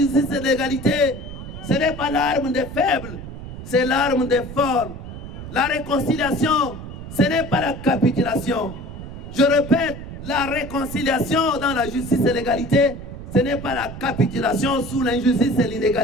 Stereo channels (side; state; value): right; noise; rumble, 11 dB below the sound